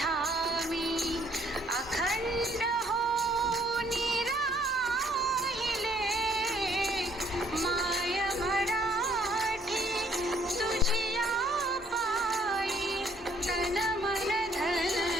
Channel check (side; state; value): both; normal; correlation 0.64